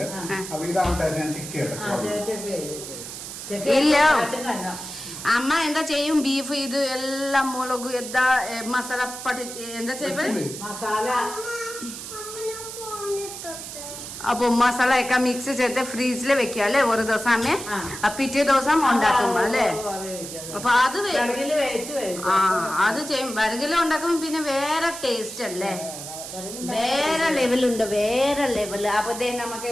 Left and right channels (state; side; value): noise; right; hiss, 10 dB below the sound